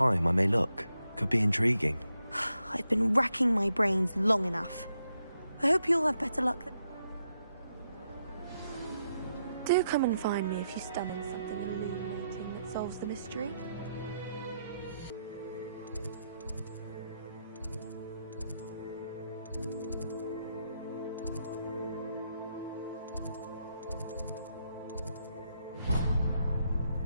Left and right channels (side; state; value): both; inverted; correlation -0.81